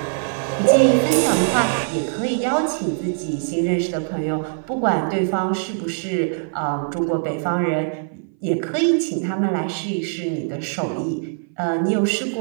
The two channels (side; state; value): left; silent; 60 dB below the other